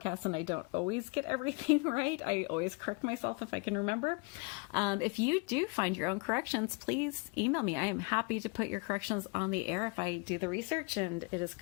and I don't always get everything right. I always correct myself if I can remember. If you do find your own corrections, please email me. I am happy to put your corrections on the air if I do the research and it is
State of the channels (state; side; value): quieter; right; 30.7 dB